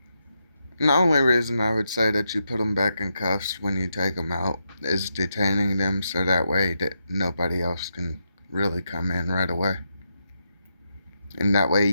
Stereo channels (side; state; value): both; inverted; correlation -0.84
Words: And the only reason I would say that you put them back in cuffs when you take them out is detaining them so that way that nobody else can really come in right away. And that way